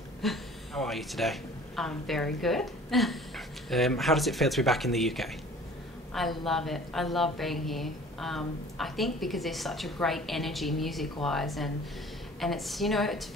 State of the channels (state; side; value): normal; both; correlation 0.48